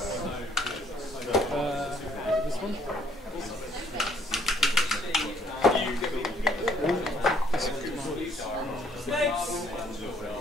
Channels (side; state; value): both; normal; correlation 0.64